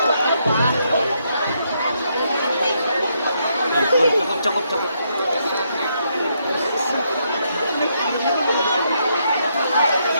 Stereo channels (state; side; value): inverted; both; correlation -0.76